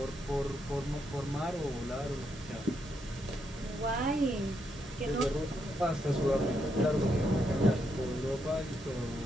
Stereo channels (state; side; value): normal; both; correlation 0.79